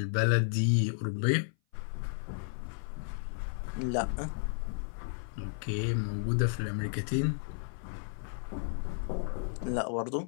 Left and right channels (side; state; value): right; silent; 56 dB below the other